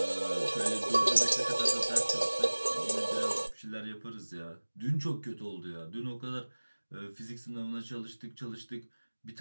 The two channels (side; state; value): both; inverted; correlation -1.00